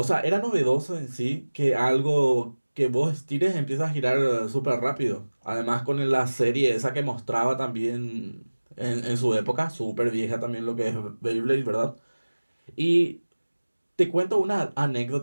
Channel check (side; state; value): both; inverted; correlation -1.00